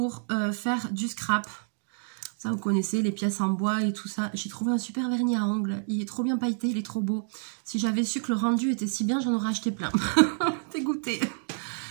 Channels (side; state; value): left; silent; 59 dB below the other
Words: faire du scrap. Ça, vous connaissez, les pièces en bois et tout ça. J'ai trouvé un super vernis à ongles. Il est trop bien pailleté, il est trop beau. Si j'avais su que le rendu était si bien, j'en aurais acheté plein. Dégoûté.